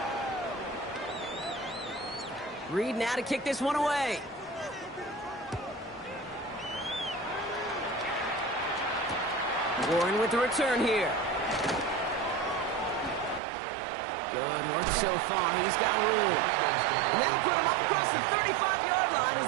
Reed now to kick this one away. Warren with the return here. Good work so far. He's got room. And that'll put him up across the 35-yard line as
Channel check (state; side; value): drops out; left; at 13.4 s